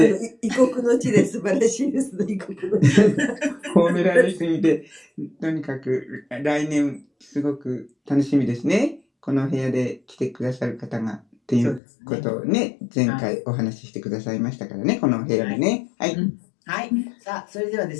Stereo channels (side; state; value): right; drops out; at 11.8 s